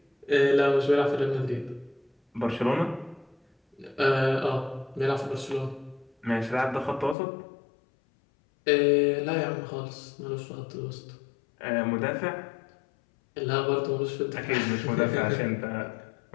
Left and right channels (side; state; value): right; drops out; at 7.2 s